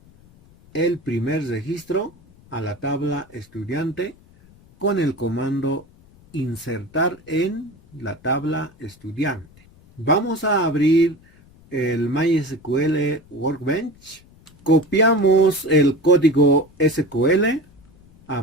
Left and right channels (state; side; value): noise; left; rumble, 27 dB below the sound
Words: el primer registro a la tabla estudiante con el comando insertar en la tabla estudiante. Vamos a abrir el MySQL Workbench. Copiamos el código SQL.